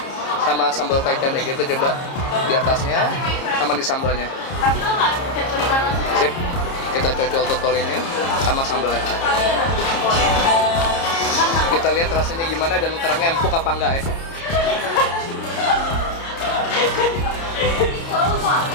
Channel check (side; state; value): right; late; 30 ms